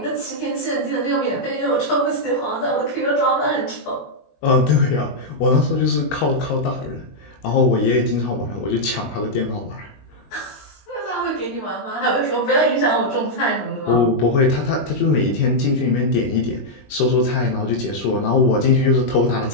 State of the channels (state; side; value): late; right; 21 ms